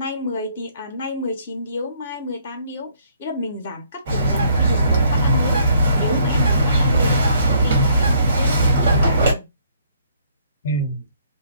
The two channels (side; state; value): both; inverted; correlation -0.65